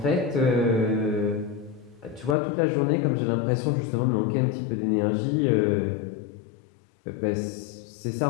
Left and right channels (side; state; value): right; drops out; at 2.4 s